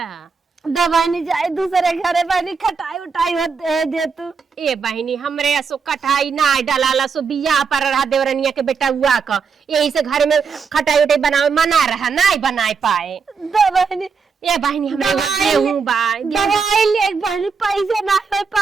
दवाई नहीं जाए दूसरे घरे बहनी खटाई उठाई दे तू। ए बहनी हमरे सो कटाई ना डाला सो बिया पर रहा देवरनिया के बेटा हुआ का यही से घर में खटाई उठाई बनावे मना रहा ना बनाए पाए। दवाई ए बहनी हमरे गेहूं बा दवाई ले बहनी पैसे ना हो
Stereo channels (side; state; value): left; quieter; 5.5 dB